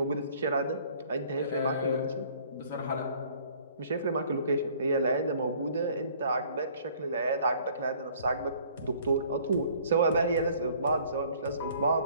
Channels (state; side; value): inverted; both; correlation -0.56